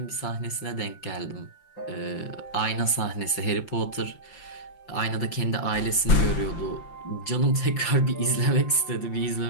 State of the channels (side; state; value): right; late; 5.8 ms